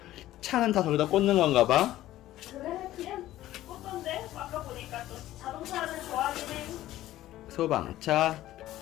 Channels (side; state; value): right; quieter; 14.5 dB